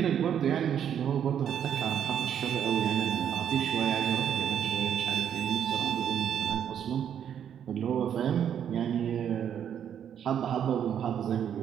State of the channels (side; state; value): left; quieter; 9.1 dB